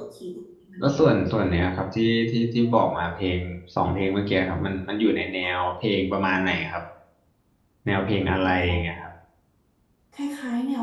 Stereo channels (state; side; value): identical; both; correlation 1.00